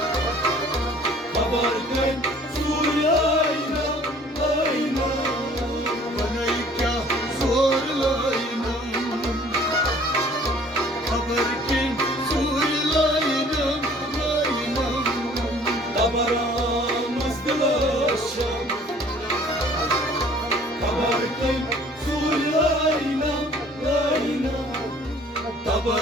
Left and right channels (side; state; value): both; normal; correlation 0.54